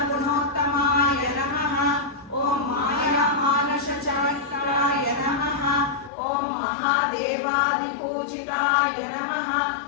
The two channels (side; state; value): right; drops out; at 6.1 s